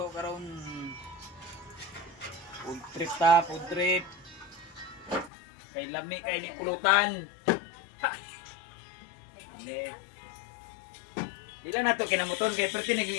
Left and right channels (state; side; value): drops out; right; at 5.3 s